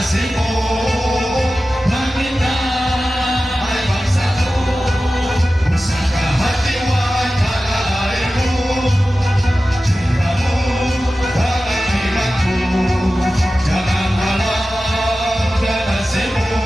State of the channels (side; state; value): both; normal; correlation 0.94